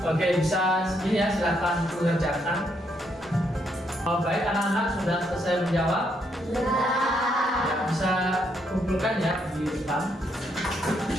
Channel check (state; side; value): normal; both; correlation 0.75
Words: Oke, bisa ini ya, silakan mengerjakan. Baik, anak-anak sudah selesai menjawab? Sudah. Ya, bisa kumpulkan ya di depan.